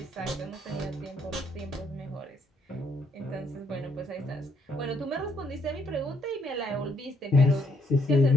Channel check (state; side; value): normal; both; correlation 0.71